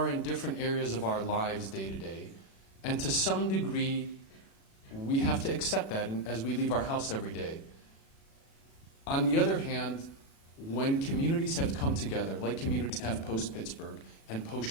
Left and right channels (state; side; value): late; right; 36 ms